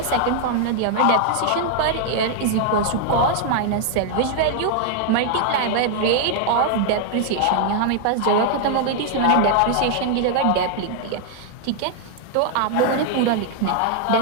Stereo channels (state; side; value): different; both; correlation 0.00